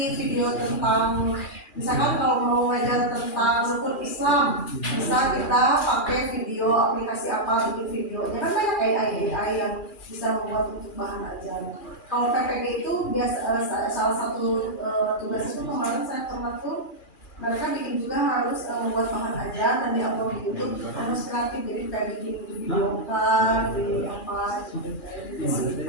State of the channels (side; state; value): right; late; 2.4 ms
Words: video tentang misalkan kalau mau belajar tentang rukun Islam, bisa kita pakai video aplikasi apa, bikin videonya kan banyak AI yang bisa membuat untuk bahan ajar. Kalau PPG itu biasa salah satu tugas itu kemarin saya pernah tuh mereka bikin juga harus membuat bahan ajar dan diupload di YouTube, harus kreatif, jadi kayak bikin video kan, di apa.